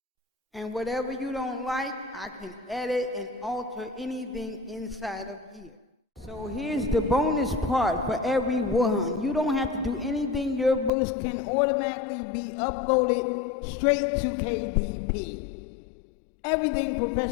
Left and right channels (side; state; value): right; drops out; at 10.9 s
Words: And whatever you don't like, I can edit and alter anything inside of here. So here's the bonus part for everyone. You don't have to do anything. Your books can automatically be uploaded straight to KDP. Everything